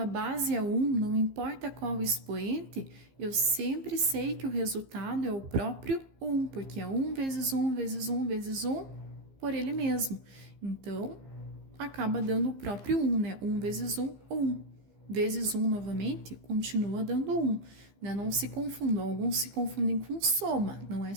base é 1, não importa qual expoente, eu sempre sei que o resultado é o próprio 1, porque é 1 vezes 1 vezes 1 vezes 1 por ele mesmo. Então, acaba dando o próprio 1, né? 1 vezes 1, 1. Vezes 1 novamente, continua dando 1. Né? Não se confundam, alguns se confundem com soma. Não é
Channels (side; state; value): left; late; 15 ms